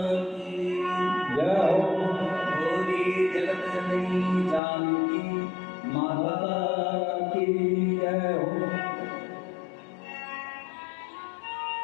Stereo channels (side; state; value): right; drops out; at 4.6 s